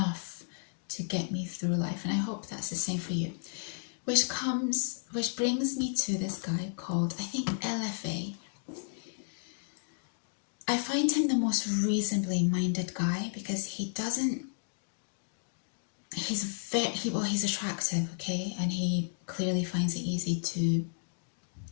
to get me through life, and I hope that's the same for you. Which brings me to this guy called, I think, LFA. I find him the most reasonably minded guy, because he's attractive, okay, and he clearly finds it easy to,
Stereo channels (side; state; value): right; silent; digital silence